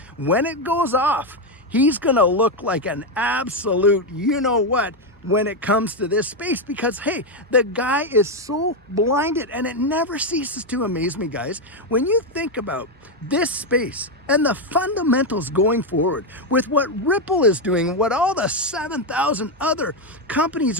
when it goes off, he's gonna look like an absolute you-know-what when it comes to this space, because hey, the guy is so blinded. And it never ceases to amaze me, guys, when you think about this space and the fundamentals going forward with what Ripple is doing, what all the 7,000 other companies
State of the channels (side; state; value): both; normal; correlation 0.06